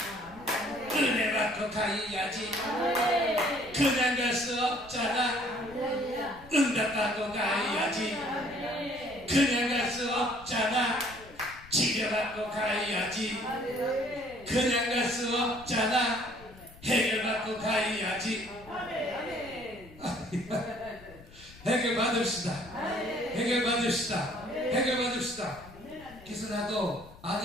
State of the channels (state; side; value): noise; left; rumble, 21 dB below the sound